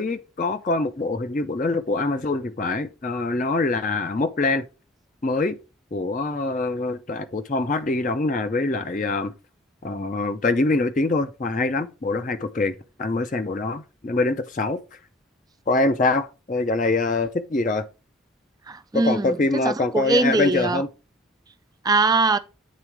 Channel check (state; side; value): normal; both; correlation 0.40